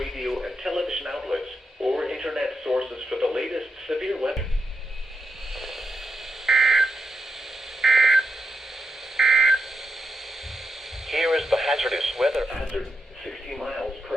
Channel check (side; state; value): both; normal; correlation 0.85